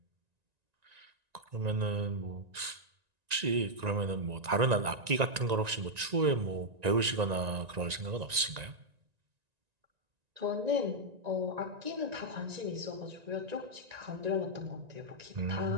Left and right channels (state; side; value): late; left; 1.9 ms